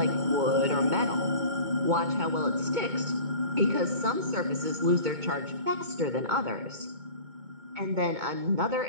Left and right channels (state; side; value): late; left; 2.2 ms